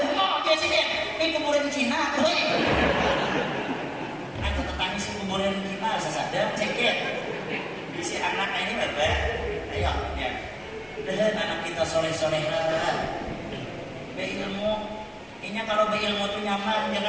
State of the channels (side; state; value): both; identical; correlation 1.00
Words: dia sini ini kuburan Cina tuh aku tetanggi si kuburan Cina sesadar cekit si anak ini bapak ayo ya dan anak kita soleh-solehan berilmu. Ini kalau berilmu itu nyaman,